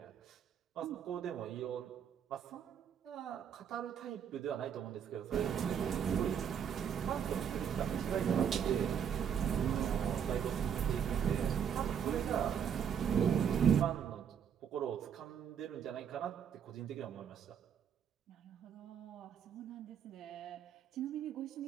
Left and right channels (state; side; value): quieter; left; 8.1 dB